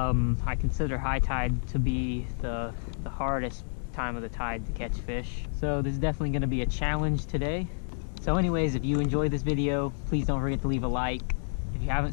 consider high tide to be the hardest time of the tide to catch fish. So this is definitely gonna be a challenge today. So anyways, if you enjoyed this video, please don't forget to leave a like. If you haven't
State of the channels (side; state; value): right; silent; digital silence